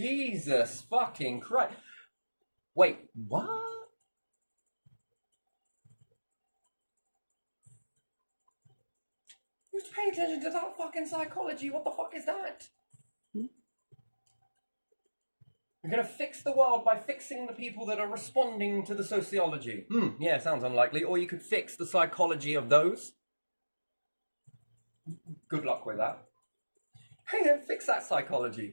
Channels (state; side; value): inverted; both; correlation -1.00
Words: fucking Christ. Wait, what? Who's paying attention to that fucking psychology? What the fuck is that? You're gonna fix the world by fixing the people that are responding to the sociology. Yeah, sounds unlikely. Or you could fix the psychology of those. Good luck with that. Hey, then fix that